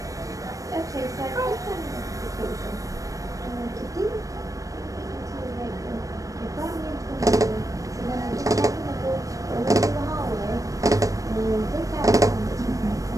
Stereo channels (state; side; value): late; left; 0.16 ms